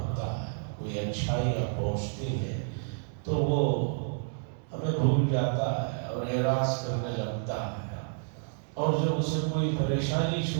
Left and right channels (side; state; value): left; silent; digital silence